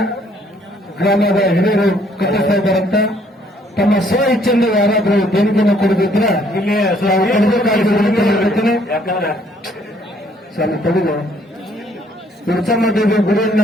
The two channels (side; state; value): both; normal; correlation 0.64